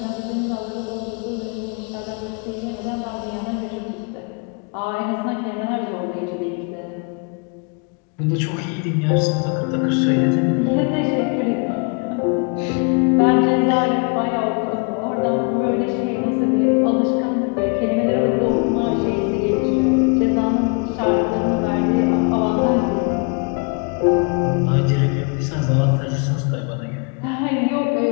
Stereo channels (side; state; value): right; quieter; 37.0 dB